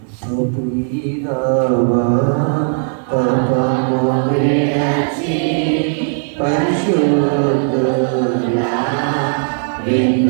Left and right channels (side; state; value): left; silent; 56 dB below the other